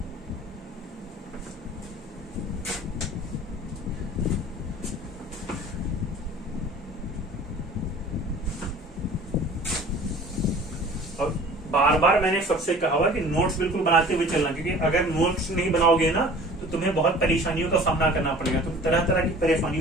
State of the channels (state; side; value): normal; both; correlation 0.46